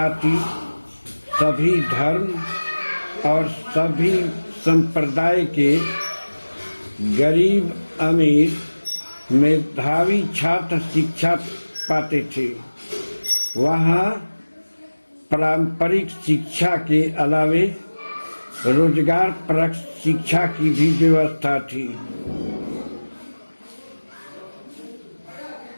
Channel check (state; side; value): inverted; both; correlation -1.00